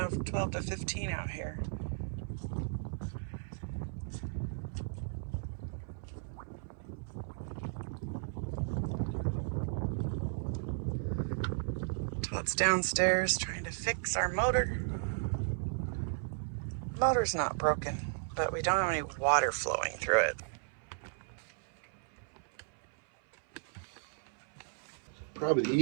12 to 15 out here. Todd's downstairs trying to fix our motor. Motor's not broken, but we don't have any water flowing through it. Probably the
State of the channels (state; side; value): silent; left; 54 dB below the other